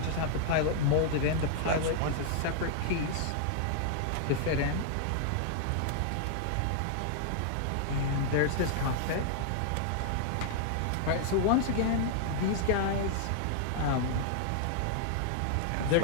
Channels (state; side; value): different; both; correlation -0.01